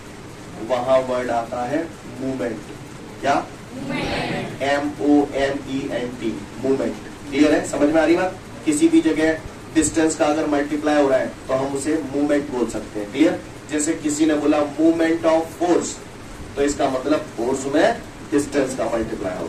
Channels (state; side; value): identical; both; correlation 1.00